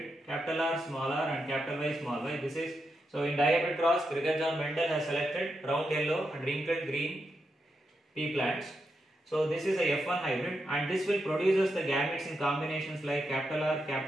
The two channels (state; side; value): normal; both; correlation 0.85